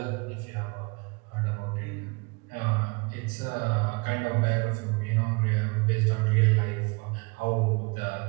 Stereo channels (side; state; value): left; quieter; 29.4 dB